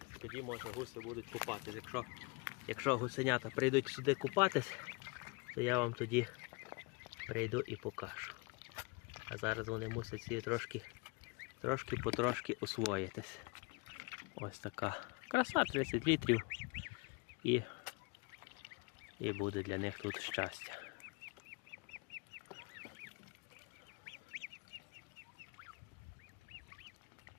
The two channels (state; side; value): quieter; right; 29.0 dB